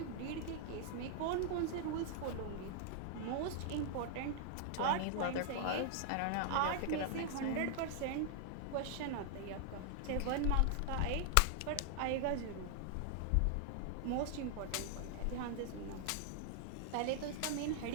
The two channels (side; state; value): both; different; correlation 0.00